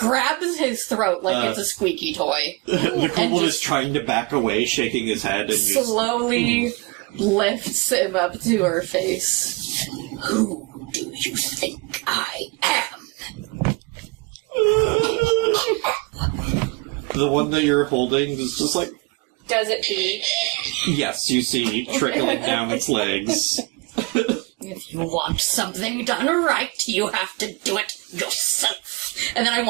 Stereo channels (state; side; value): quieter; left; 26.0 dB